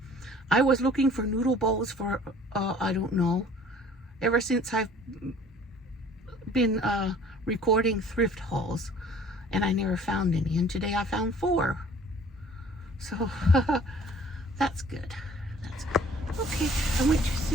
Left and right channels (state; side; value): normal; both; correlation 0.51